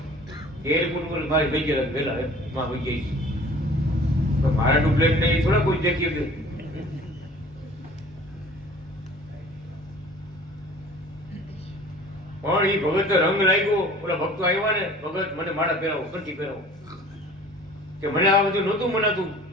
એરપોર્ટ ઉપર મારી ભાઈ ગયા પેલા માં ભાઈ ગઈ તો મારા ડુપ્લેટ ને થોડા કોઈ દેખી કે પણ એ ભગત રંગ લાગ્યો. ઓલા ભક્તો આવ્યા ને ભગત મને માળા પહેરાવો, કંઠી પહેરાવો, કે મને આ બધું નહોતું મનાતું.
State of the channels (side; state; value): both; normal; correlation 0.47